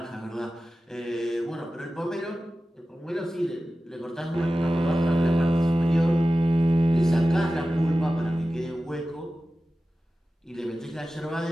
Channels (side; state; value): both; normal; correlation 0.95